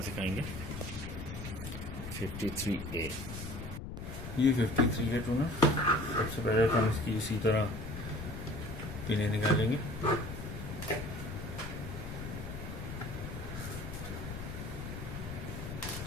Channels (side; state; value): left; noise; rumble, 8 dB below the sound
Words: सिखाएंगे। 53A, ये 53A टूनर। सबसे पहले हम इसकी इसी तरह पिने निकालेंगे।